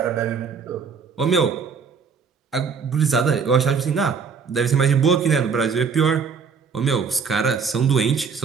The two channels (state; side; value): quieter; left; 5.8 dB